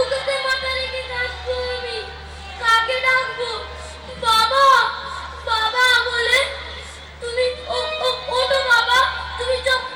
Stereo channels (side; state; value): both; identical; correlation 1.00